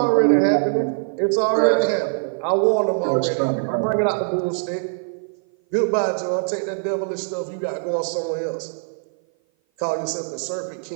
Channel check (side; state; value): left; silent; 57 dB below the other